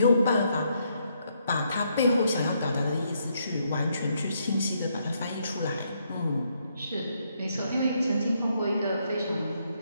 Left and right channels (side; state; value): both; inverted; correlation -0.74